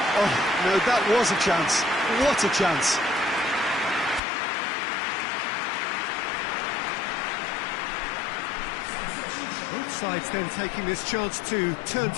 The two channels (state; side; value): drops out; right; at 4.2 s